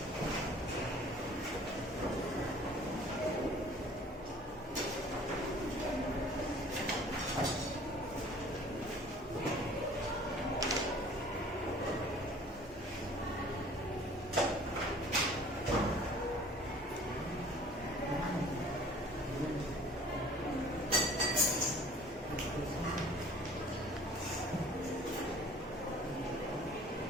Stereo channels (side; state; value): both; normal; correlation 0.49